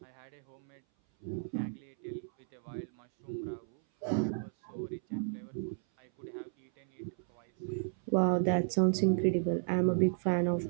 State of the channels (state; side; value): silent; left; 55 dB below the other